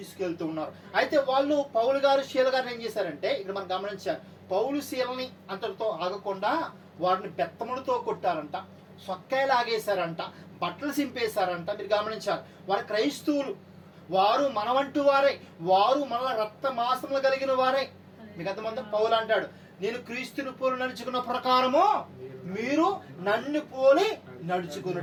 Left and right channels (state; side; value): identical; both; correlation 1.00